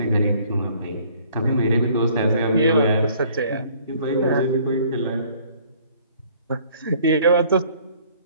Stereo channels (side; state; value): both; inverted; correlation -0.58